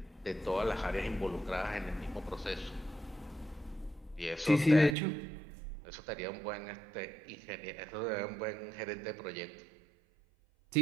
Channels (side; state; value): left; drops out; at 5.0 s